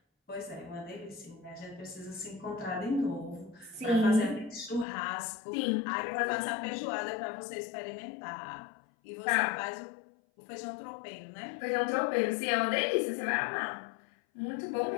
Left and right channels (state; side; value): drops out; right; at 4.9 s